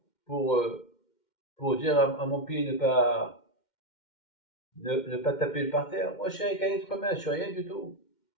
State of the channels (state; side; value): late; right; 2.1 ms